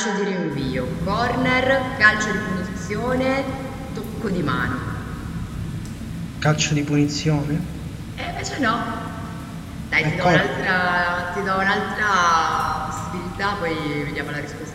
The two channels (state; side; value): identical; both; correlation 1.00